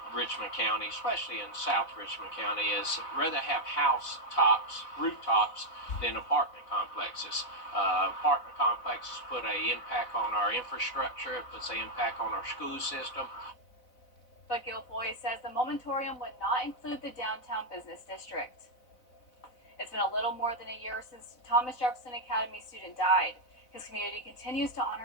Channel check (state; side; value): late; right; 4.0 ms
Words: Richmond County, especially in South Richmond County, is rather have house tops, rooftops, than apartment complexes. Apartment complexes put an impact on our infrastructure, it puts an impact on our school system. But Guilfoyle says the moratorium would not include the downtown business district. It's been a little more than a year since Thomas Jefferson Academy student died. His community continues to